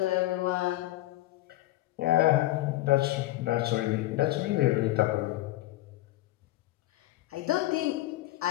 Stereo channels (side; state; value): right; quieter; 16.5 dB